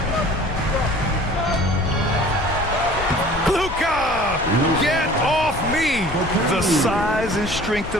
Luka! Get off me! The size and strength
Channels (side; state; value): left; noise; rumble, 10 dB below the sound